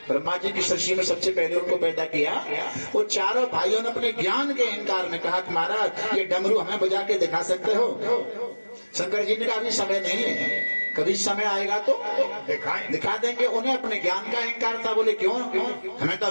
ब्रह्मा जी की सृष्टि में सबसे पहले उनको पैदा किया, वो चारों भाइयों ने अपने ज्ञान के अहंकार में कहा कि महाराज ये डमरू हमें बजा के दिखा सकते हो? शंकर जी ने कहा अभी समय नहीं है, कभी समय आएगा तो दिखा देंगे। उन्हें अपने ज्ञान का अहंकार था। बोले क्यों, हमें तो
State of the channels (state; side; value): inverted; both; correlation -1.00